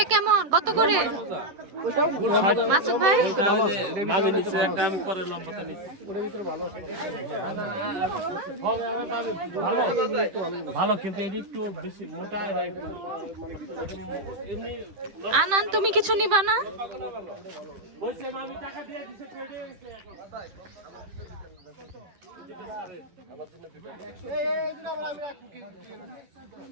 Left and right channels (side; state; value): left; late; 10 ms